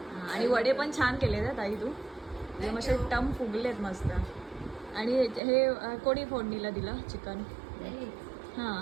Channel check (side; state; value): left; drops out; at 5.4 s